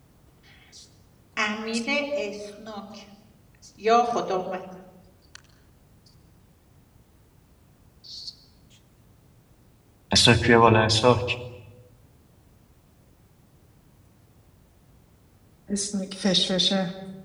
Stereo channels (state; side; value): identical; both; correlation 1.00